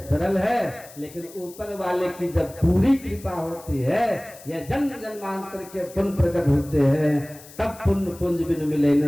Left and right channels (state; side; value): noise; left; hiss, 20 dB below the sound